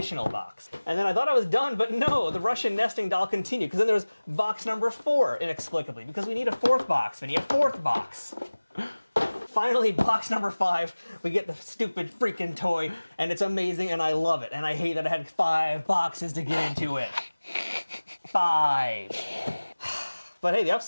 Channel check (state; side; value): inverted; both; correlation -1.00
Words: box. And then I thought I was done, but no, the Russian nesting doll continued, because then there was box number 4, inexplicably, because we need a 4th box, Vinny, a 4th box. Finally, box number 5, we get the stupid freaking toy, and it's amazing, and I love it. And I hate that I had 5 boxes to get into it. 5. But hey, the